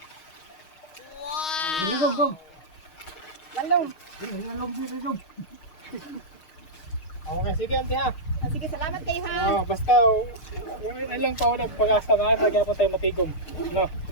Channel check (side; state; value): right; late; 6.4 ms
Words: Wow! Go. Lalong. Okay, sige Auntie ha. Ah, sige, salamat kayo ha. Basta, yung ilang pa ulit pag-asa na lagyan po tayo matigom. No?